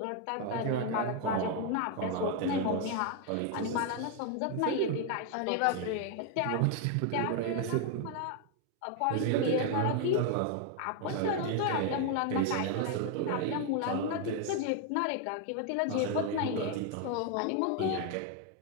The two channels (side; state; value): both; different; correlation 0.01